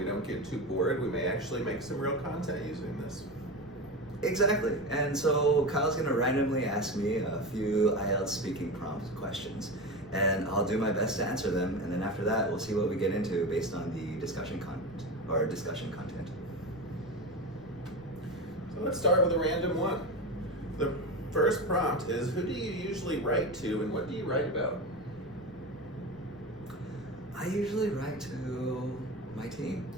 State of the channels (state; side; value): noise; left; rumble, 23 dB below the sound